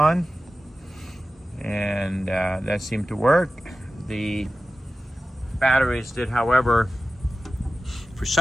and that seemed to work. The batteries did, however, for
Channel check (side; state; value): both; normal; correlation 0.94